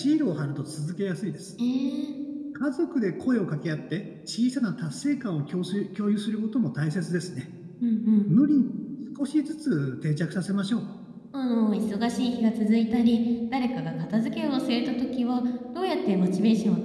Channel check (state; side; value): identical; both; correlation 1.00